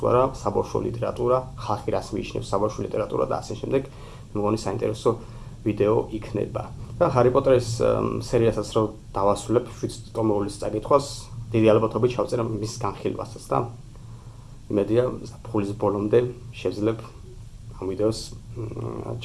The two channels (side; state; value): both; identical; correlation 1.00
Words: არა საბავშვო ლიტერატურა, ხალხი რას მიიჩნევს საბავშვო ლიტერატურა და ასე შემდეგ. მგონი საინტერესო ვიდეო იქნება. და ჰარი პოტერის სერიასაც რო დავასრულებ 7 ტომოვლის წაკითხვას, დიდი ალბათობით ჩავწერა მის განხილვასაც და იმედია ზაფხულის ბოლომდე შევძლებ ამ ვიდეოს